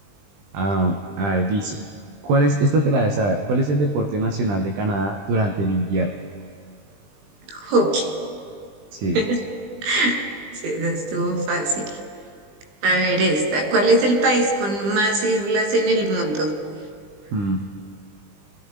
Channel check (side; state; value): left; late; 20 ms